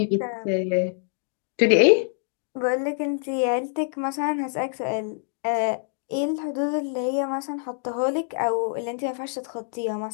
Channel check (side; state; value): right; silent; digital silence